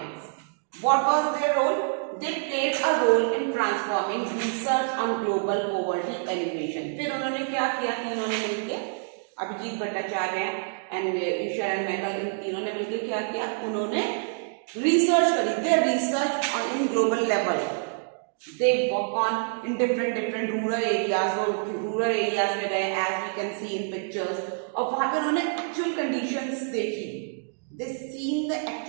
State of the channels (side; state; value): left; silent; digital silence